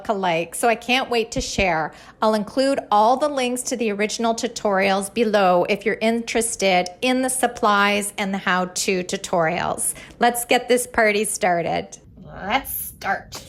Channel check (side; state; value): both; identical; correlation 1.00